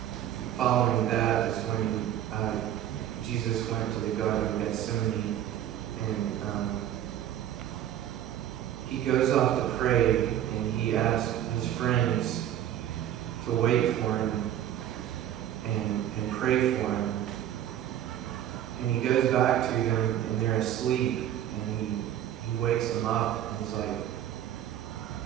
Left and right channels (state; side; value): quieter; left; 11.3 dB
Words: following that is when Jesus went to the Garden of Gethsemane, and he goes off to pray, and he asks his friends to wait for him and pray for him. And he goes back to them, and they're asleep, and he wakes them up, and he's like,